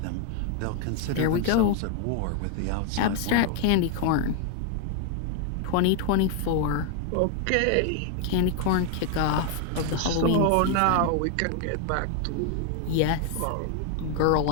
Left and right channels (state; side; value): different; both; correlation 0.00